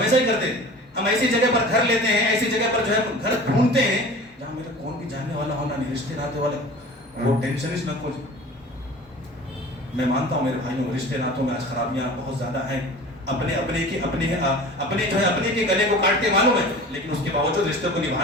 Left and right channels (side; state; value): both; normal; correlation 0.39